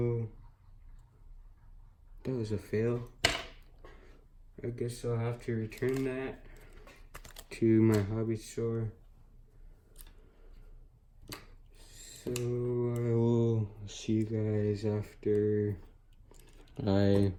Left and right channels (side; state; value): both; identical; correlation 1.00